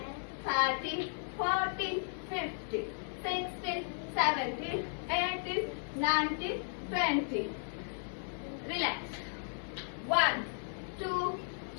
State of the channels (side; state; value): right; silent; 54 dB below the other